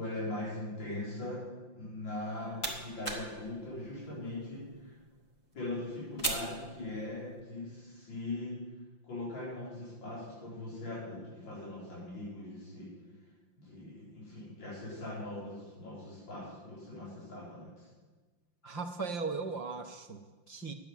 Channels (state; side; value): late; right; 5.8 ms